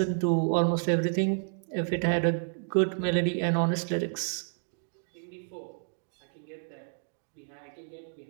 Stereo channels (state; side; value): silent; left; digital silence